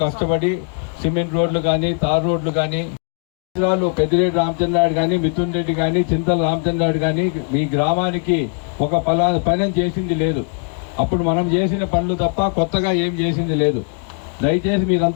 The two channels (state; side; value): quieter; right; 39.3 dB